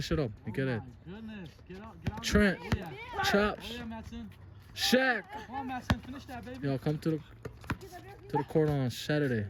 shut up. You get it. Trent. Chops. Shaq. Come on, Matson, finish that, baby. Yo, come to the court on Saturday.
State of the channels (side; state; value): both; identical; correlation 1.00